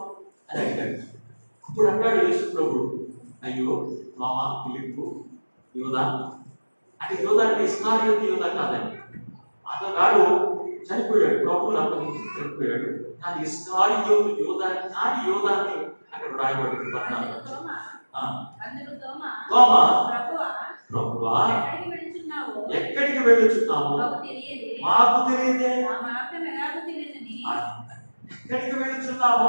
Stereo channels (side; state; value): both; inverted; correlation -1.00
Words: అని అడిగాడు. అప్పుడు అన్నాడు యేసు ప్రభు, అయ్యో తోమా, ఫిలిప్పు, యోదా, అంటే యోదా అంటే ఇస్కారియోతు యోదా కాదండి. అతగాడు చనిపోయాడు, ప్రభువుని అప్పగించి చనిపోయాడు. కానీ ఇస్కారియోతు యోదా కాని యోదాన్ని అక్కడ రాయబడింది. 14. తోమా, ప్రభువా ఎక్కడికి వెళ్ళుచున్నాము? మాకు తెలియదే. ఎక్కడికి వెళ్ళుచున్నామో